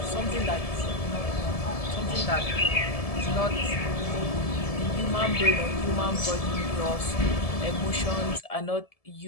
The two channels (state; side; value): late; right; 1.7 ms